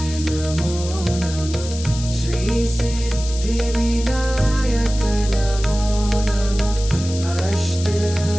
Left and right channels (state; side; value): noise; left; hiss, 12 dB below the sound